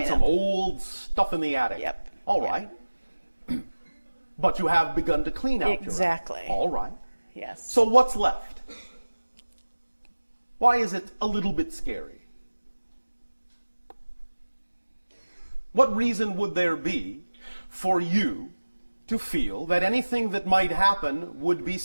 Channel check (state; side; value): inverted; both; correlation -1.00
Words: right, some up. old stuff in the attic. Yep. All right. But you have begun to clean out Exactly. your attic. All right. Yes. So what's left? Why is it a little bit scary? What reason would there be for you to feel that anything that might happen would be